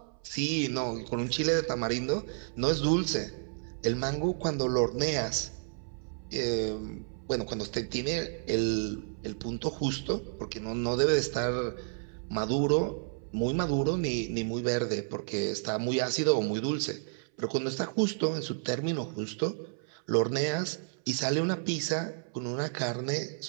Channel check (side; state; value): left; silent; 57 dB below the other